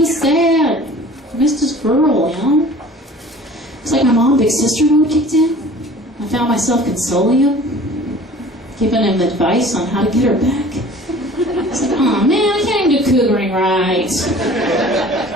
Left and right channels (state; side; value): normal; both; correlation 0.46